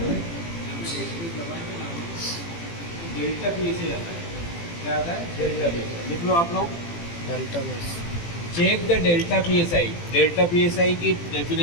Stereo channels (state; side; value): late; right; 18 ms